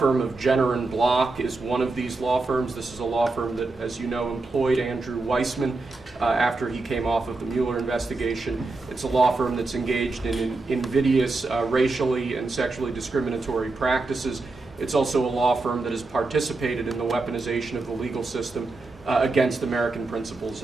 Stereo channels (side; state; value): left; quieter; 3.5 dB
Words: of Jenner and Block is one of these law firms. This is a law firm that, as you know, employed Andrew Weissman after he came off of the Mueller investigation. It's a law firm that's engaged in invidious racially and sexually discriminatory practices. It's also a law firm that has participated in the weaponization of the legal system against American principles